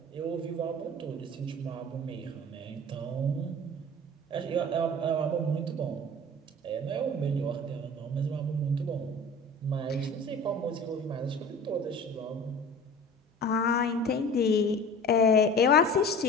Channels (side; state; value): both; normal; correlation 0.39